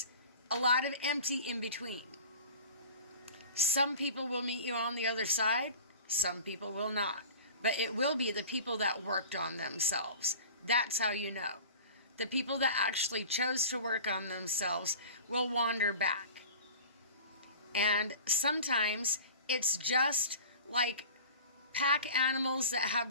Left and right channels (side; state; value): both; inverted; correlation -0.39